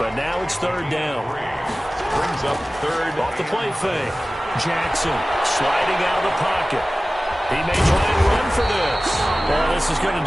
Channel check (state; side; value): normal; both; correlation 0.97